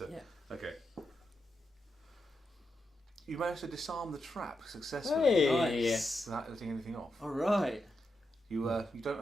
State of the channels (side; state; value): both; normal; correlation 0.86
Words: Yeah. Okay. You managed to disarm the trap successfully. Hey. Nice. Without letting anything off. All right. You don't